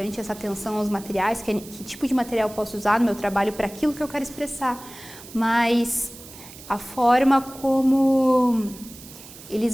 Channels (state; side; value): noise; right; hiss, 17 dB below the sound